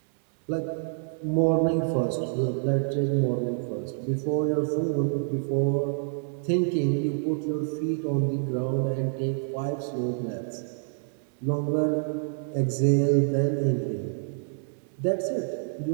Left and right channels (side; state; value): left; silent; 60 dB below the other